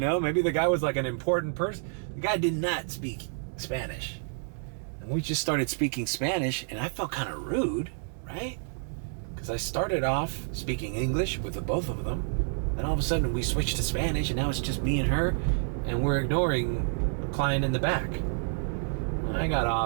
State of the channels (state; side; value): silent; left; 59 dB below the other